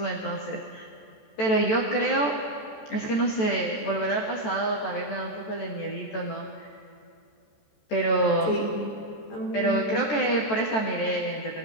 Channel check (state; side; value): late; right; 14 ms